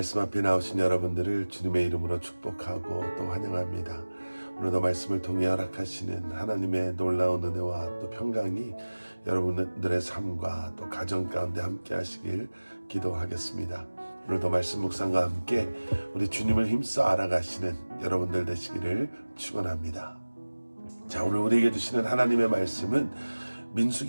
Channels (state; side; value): inverted; both; correlation -1.00